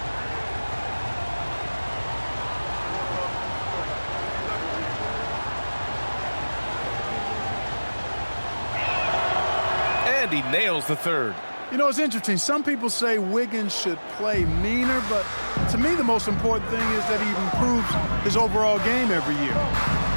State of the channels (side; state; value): both; inverted; correlation -1.00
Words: And he nails the third. You know, it's interesting. Some people say Wiggins should play meaner, but to me the most important thing is that he improves his overall game every year.